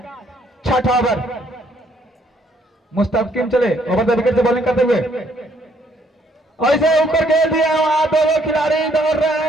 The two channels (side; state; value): both; normal; correlation 0.67